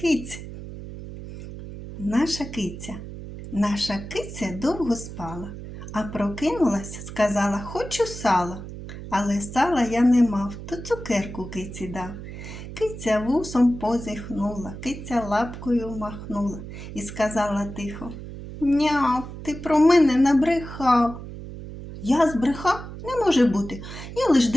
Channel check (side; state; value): right; noise; hum, 11 dB below the sound